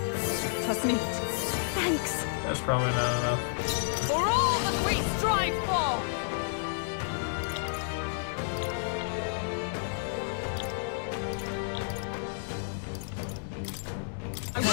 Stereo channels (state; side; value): silent; right; digital silence